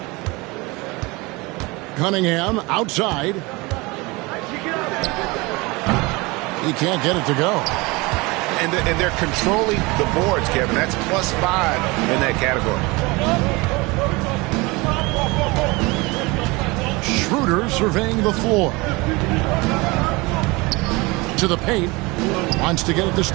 Cunningham outside. He can't get it to go. And they're controlling the boards, Kevin. That's +5 in that category. Schroeder surveying the floor. To the paint. Wants to get it to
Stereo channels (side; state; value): left; quieter; 24.4 dB